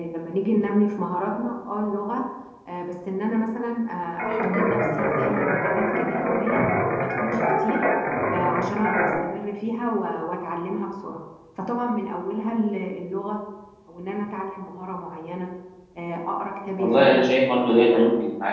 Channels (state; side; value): identical; both; correlation 1.00